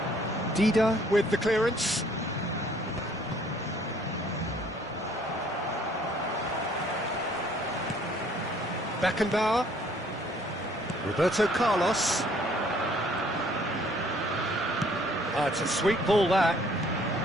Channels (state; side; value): normal; both; correlation 0.60